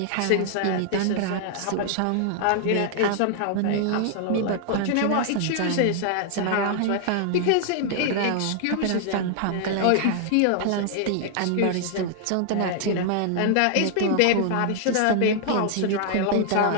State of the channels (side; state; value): both; different; correlation -0.01